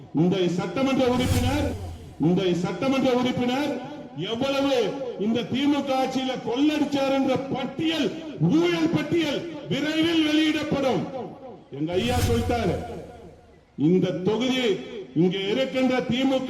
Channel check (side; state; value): both; identical; correlation 1.00